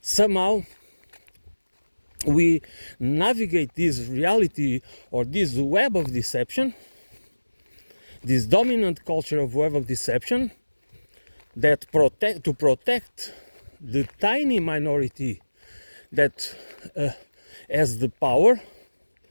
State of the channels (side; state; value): both; inverted; correlation -1.00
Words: Somehow we navigate this reality, or this web of deception, this dominant culture of web of deception, that protect the tiny minority that has the power,